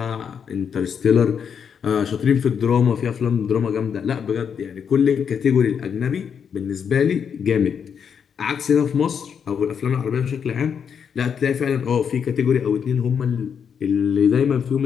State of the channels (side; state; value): right; quieter; 7.2 dB